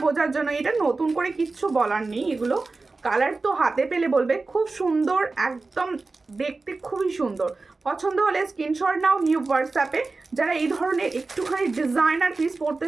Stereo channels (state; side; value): quieter; left; 3.7 dB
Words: বোঝার জন্য এটা নতুন করে কিচ্ছু বলার নেই এগুলো কালার তো হাতে পেলে বলবে খুব সুন্দর একদম দেখতে খুবই সুন্দর পছন্দ হলে স্ক্রিনশট নাও নিউ হোয়াটসঅ্যাপে যারা এই ধরনের একটুখানি ডিজাইনার পিস পড়তে